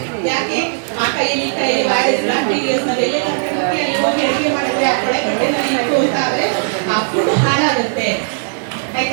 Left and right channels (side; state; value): left; silent; digital silence